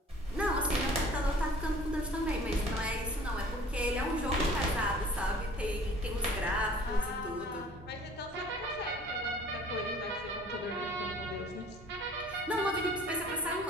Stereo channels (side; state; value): both; normal; correlation 0.50